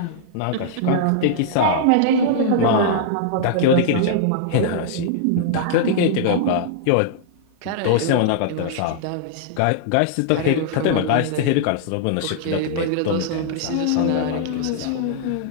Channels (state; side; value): different; both; correlation -0.01